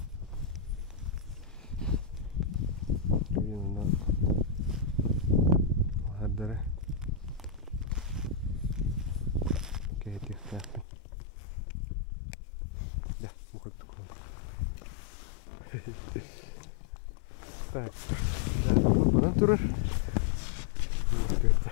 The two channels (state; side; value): drops out; right; at 10.9 s